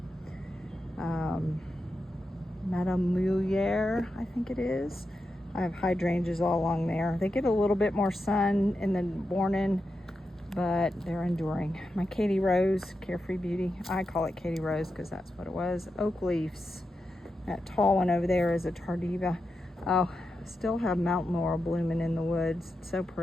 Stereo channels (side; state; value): both; normal; correlation 0.88